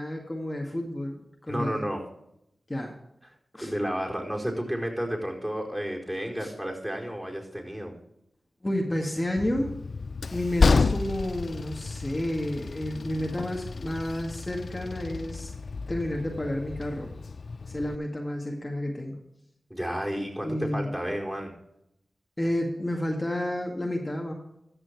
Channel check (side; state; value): both; normal; correlation 0.96